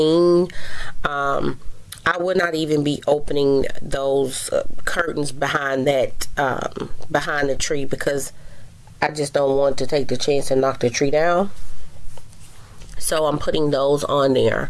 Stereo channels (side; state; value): both; identical; correlation 1.00